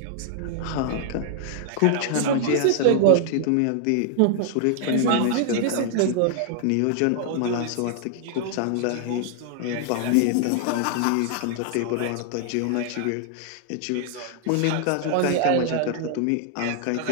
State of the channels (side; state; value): both; different; correlation 0.00